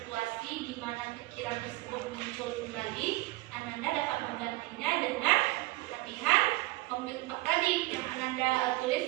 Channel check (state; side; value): quieter; left; 20.2 dB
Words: di mana pikiran tersebut muncul kembali, Ananda dapat menggantinya dengan latihan pembentuk tadi yang Ananda